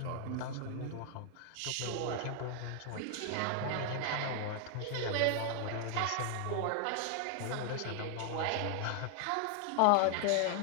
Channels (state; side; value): different; both; correlation 0.00